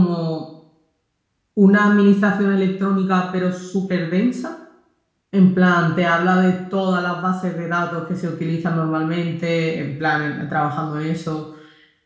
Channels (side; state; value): both; identical; correlation 1.00